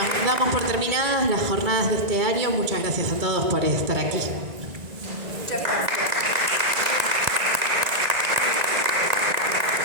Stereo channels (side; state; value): left; late; 1.9 ms